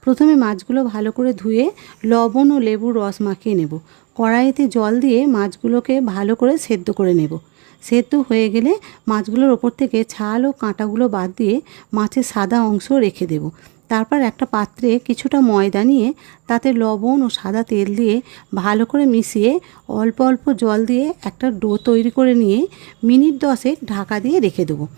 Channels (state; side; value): quieter; left; 30.7 dB